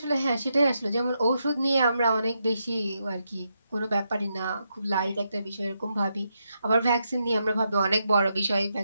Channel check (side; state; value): both; inverted; correlation -0.82